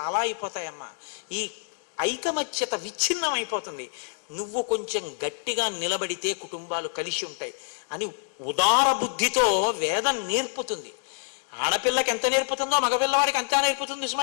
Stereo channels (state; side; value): silent; right; 57 dB below the other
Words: అయిపోతాయమ్మా. ఈ ఐకమత్యత విచ్ఛిన్నం అయిపోతుంది. నువ్వు కొంచెం గట్టిగా నిలబడితే కుటుంబాలు కలిసి ఉంటాయి అని ఉదార బుద్ధితో వేదం నేర్పుతుంది. ఆడపిల్లకి ఎంత నేర్పుతుందో మగపిల్లవాడికి అంతా నేర్పుతుంది